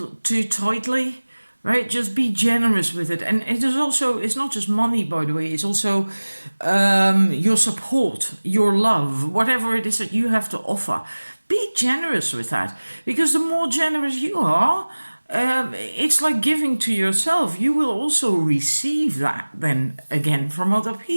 too tightly, right? Just be generous with it. And it is also, it's not just money, by the way, it's also your support, your love, whatever it is that you have to offer. Be generous with that, because the more generous you are, it's like giving to yourself. You will also receive that then again from other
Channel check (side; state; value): both; inverted; correlation -1.00